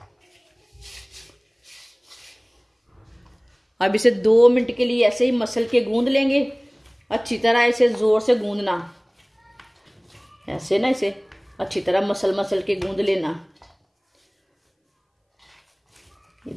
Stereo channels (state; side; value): identical; both; correlation 1.00